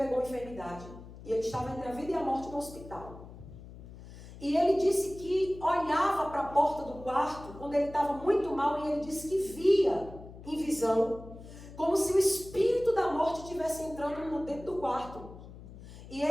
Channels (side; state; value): left; noise; hum, 16 dB below the sound